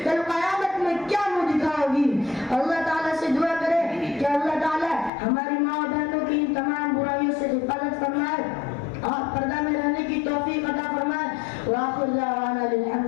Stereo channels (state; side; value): drops out; right; at 5.1 s